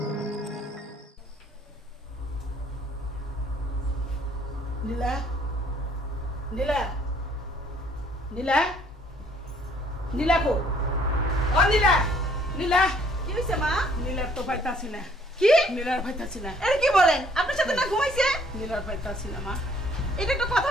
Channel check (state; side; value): normal; both; correlation 0.62